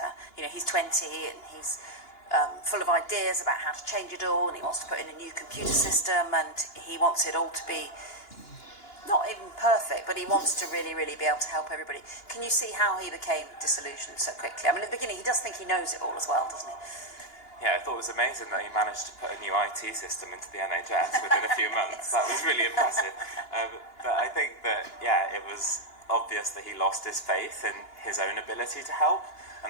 he's 20 and he's full of ideas about how to change it all, and he wants to put in a new computer system, and he wants it all to be not even perfect, but he wants to really, really be able to help everybody. Can you see how he became disillusioned so quickly? I mean, at the beginning, he does think he knows it all as well, doesn't he? Yeah, I thought it was amazing that he managed to put a new IT system into the NHS within a few months. That was really impressive. But I think that, yeah, it was obvious that he lost his faith in his own ability to help.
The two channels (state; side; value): late; right; 2.9 ms